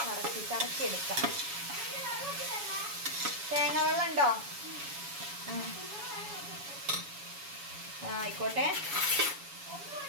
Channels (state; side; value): late; left; 7.1 ms